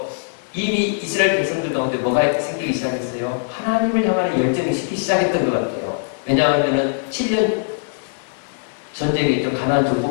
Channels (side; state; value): right; silent; digital silence